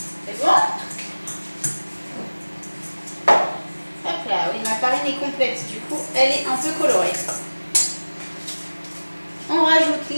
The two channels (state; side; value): inverted; both; correlation -1.00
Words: C'est bon? Hop là, oui, ma farine est complète, du coup, elle est un peu colorée. On rajoute